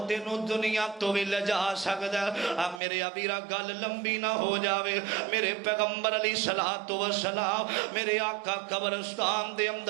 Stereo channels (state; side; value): drops out; left; at 2.8 s